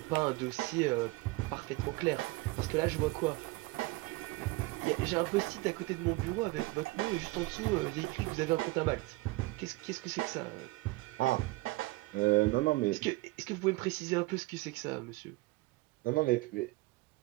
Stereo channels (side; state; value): left; quieter; 22.2 dB